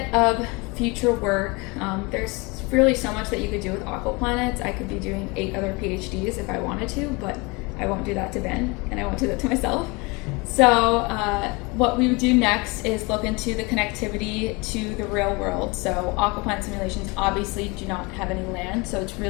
of future work. There's really so much that you could do with aquaplanets. I could be doing 8 other PhDs if I wanted to, but I won't do that to Ben, and I won't do that to myself. So what we would do next is look into the connectivity to the real world. So aquaplanet simulations obviously do not have any land, so it's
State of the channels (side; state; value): right; quieter; 27.0 dB